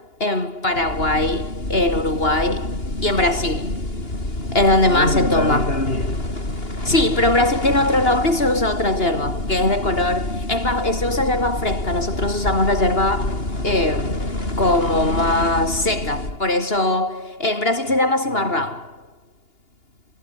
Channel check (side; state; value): right; late; 2.8 ms